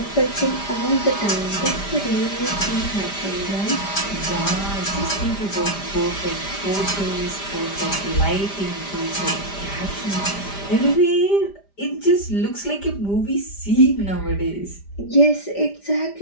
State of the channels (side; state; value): right; late; 5.0 ms